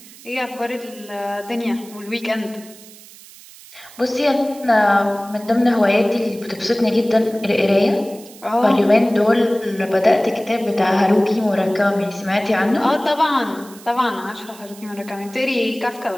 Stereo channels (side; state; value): right; noise; hiss, 20 dB below the sound